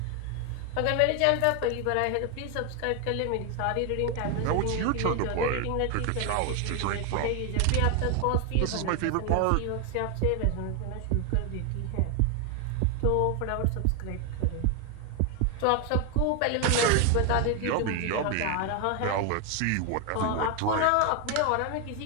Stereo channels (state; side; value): different; both; correlation 0.01